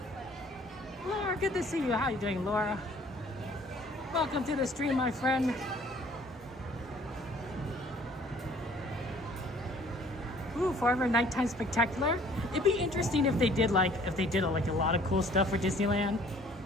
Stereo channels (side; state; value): both; normal; correlation 0.56